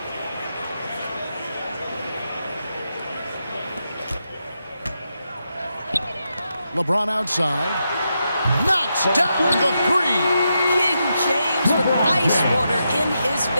LeBron outside. Knocks down the 3. King James with ice water in his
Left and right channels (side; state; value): both; inverted; correlation -0.85